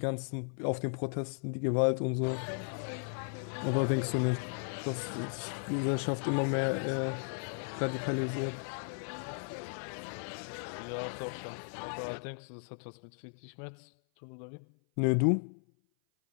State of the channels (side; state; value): right; silent; 54 dB below the other